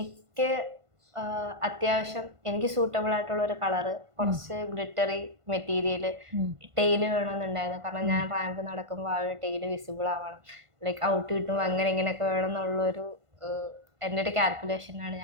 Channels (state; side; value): late; left; 1.5 ms